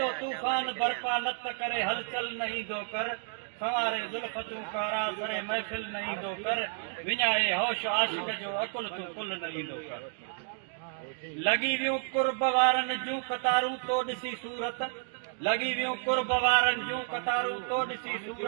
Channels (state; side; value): silent; left; 56 dB below the other